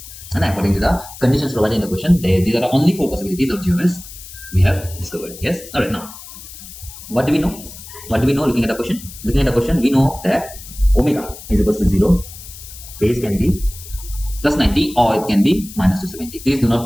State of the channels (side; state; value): left; noise; hiss, 15 dB below the sound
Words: And according to the conditions provided in the question, these are the only 4 possibilities of GOS we have discovered. Yes. All right. Now, what do we know? What do we know looking at the question? Looking at the question, we know that omega is equal to 0. Phase can be plus 90 or it can be minus 270. Please do not